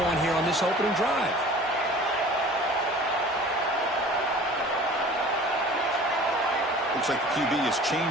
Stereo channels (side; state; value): both; normal; correlation 0.44